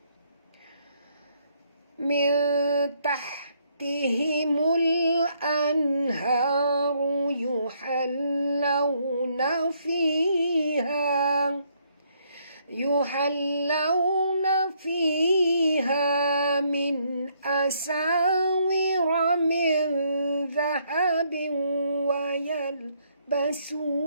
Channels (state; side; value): inverted; both; correlation -0.71